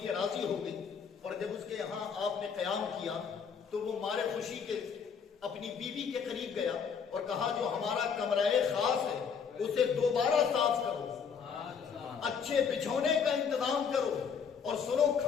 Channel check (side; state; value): right; quieter; 6.5 dB